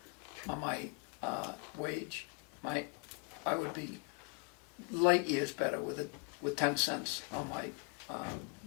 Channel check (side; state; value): right; quieter; 34.5 dB